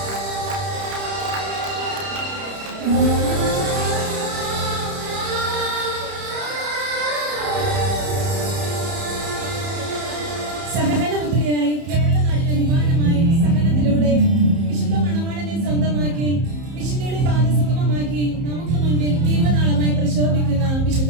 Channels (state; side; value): late; left; 30 ms